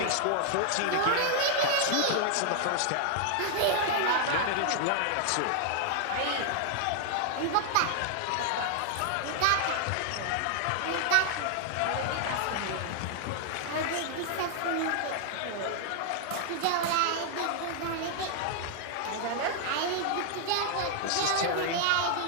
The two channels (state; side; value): different; both; correlation 0.00